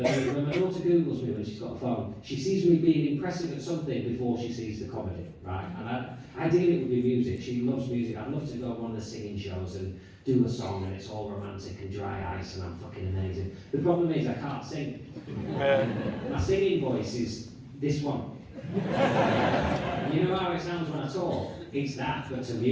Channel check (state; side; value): identical; both; correlation 1.00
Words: my daughter Googles me when she's got a phone, she sees me being impressive at something before she sees the comedy, right? And ideally it would be music. She loves music. I'd love to go on one of the singing shows and do a song and it's all romantic and dry ice and I'm fucking amazing. The problem is I can't sing. My singing voice is this one. You know how it sounds when I talk? It's that, but to